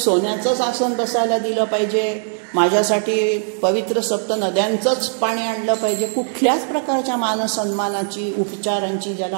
आसन बसायला दिलं पाहिजे, माझ्यासाठी पवित्र सप्त नद्यांचंच पाणी आणलं पाहिजे, कुठल्याच प्रकारच्या मानसन्मानाची उपचारांची ज्याला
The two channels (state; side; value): silent; left; digital silence